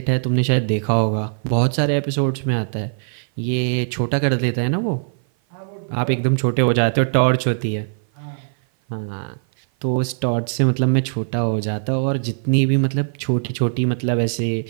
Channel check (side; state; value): left; silent; 56 dB below the other